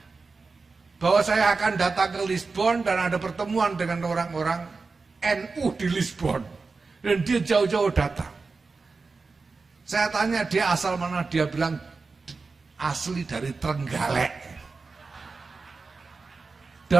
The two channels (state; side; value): quieter; left; 4.2 dB